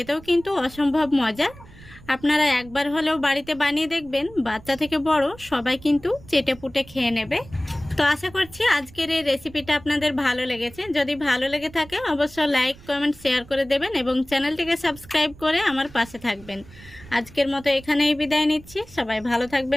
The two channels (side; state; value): right; noise; rumble, 21 dB below the sound